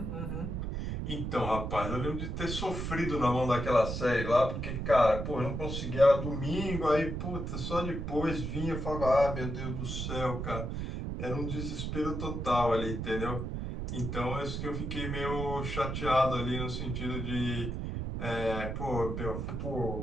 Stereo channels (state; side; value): noise; right; rumble, 4 dB below the sound